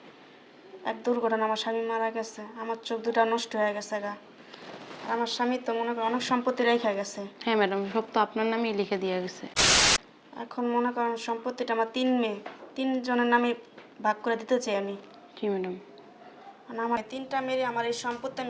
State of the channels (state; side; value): identical; both; correlation 1.00